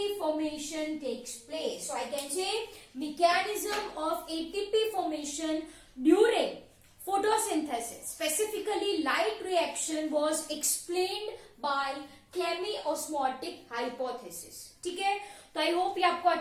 formation takes place. So I can say mechanism of ATP formation during photosynthesis, specifically light reaction, was explained by chemiosmotic hypothesis. ठीक है, तो आई होप ये आपको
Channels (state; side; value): identical; both; correlation 1.00